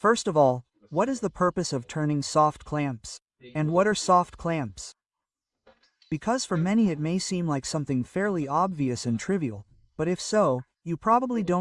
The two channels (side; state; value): both; identical; correlation 1.00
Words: of all, what is the purpose of turning soft clamps? And what are soft clamps? Because for many it may seem like something fairly obvious and trivial, but if so, you probably